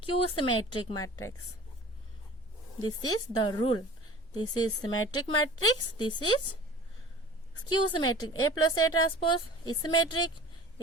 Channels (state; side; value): normal; both; correlation 0.42